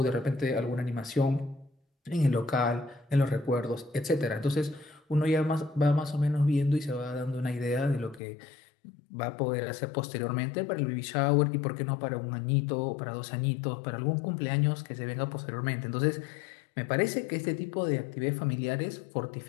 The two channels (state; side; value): drops out; right; at 8.2 s